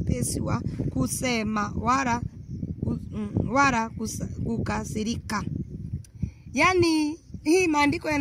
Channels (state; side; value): identical; both; correlation 1.00